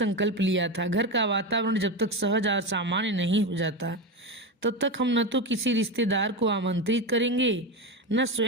लिया था, घर का वातावरण जब तक सहज और सामान्य नहीं हो जाता तब तक हम न तो किसी रिश्तेदार को आमंत्रित करेंगे, न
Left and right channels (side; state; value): both; normal; correlation 0.17